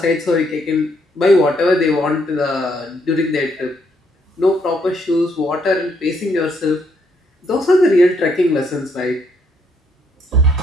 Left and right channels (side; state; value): both; normal; correlation 0.72